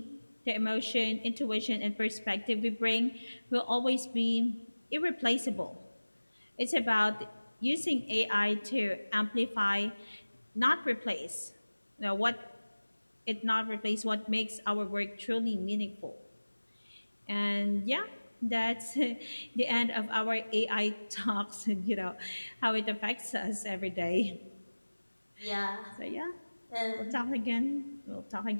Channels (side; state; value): both; inverted; correlation -1.00